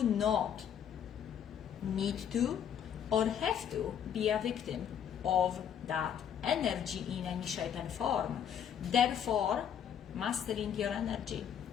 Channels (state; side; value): quieter; right; 8.7 dB